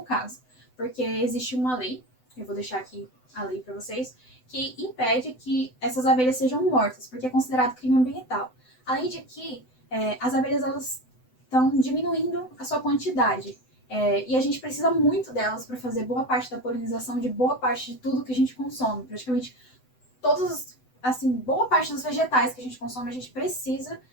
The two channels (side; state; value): right; late; 7.9 ms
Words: caso, porque existe uma lei, eu vou deixar aqui a lei para vocês, que impede que essas abelhas sejam mortas, porque é considerado crime ambiental. Além de que as abelhas elas estão diminuindo a sua quantidade. E a gente precisa muito delas para fazer boa parte da polinização de boa parte de tudo que a gente consome. Praticamente boa parte dos vegetais que a gente consome, a gente precisa